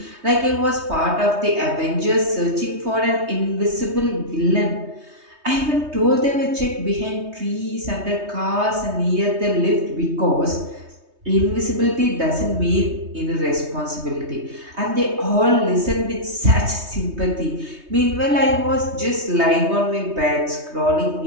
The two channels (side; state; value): left; late; 3.2 ms